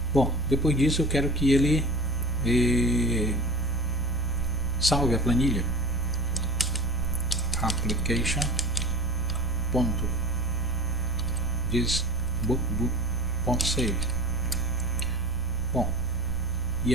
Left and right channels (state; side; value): normal; both; correlation 0.36